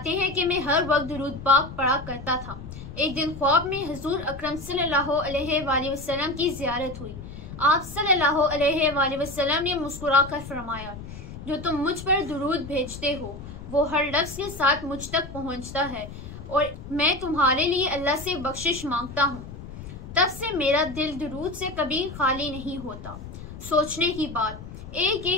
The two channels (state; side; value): noise; left; rumble, 12 dB below the sound